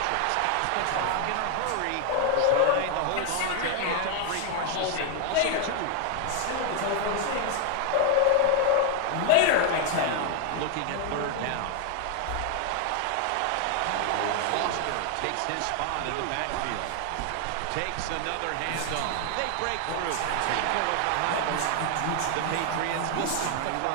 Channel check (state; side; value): different; both; correlation 0.00